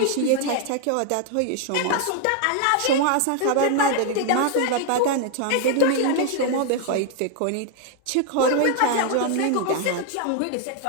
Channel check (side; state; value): both; different; correlation 0.00